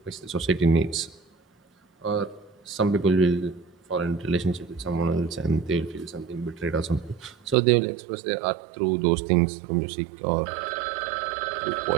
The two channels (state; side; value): drops out; left; at 7.6 s